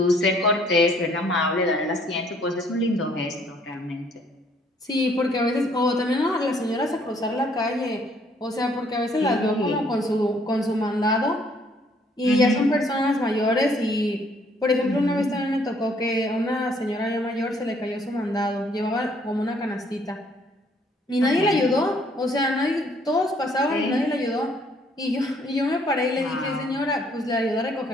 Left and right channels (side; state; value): both; normal; correlation 0.64